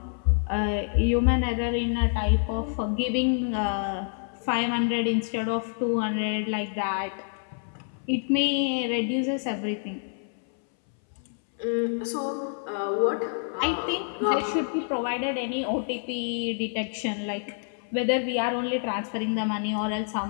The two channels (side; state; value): right; silent; 60 dB below the other